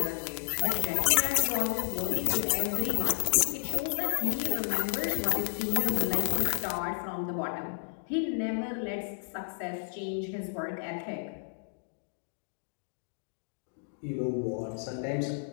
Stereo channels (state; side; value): silent; right; digital silence